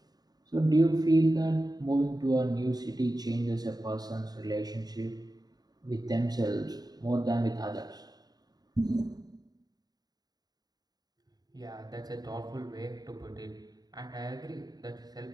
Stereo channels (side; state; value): left; late; 0.19 ms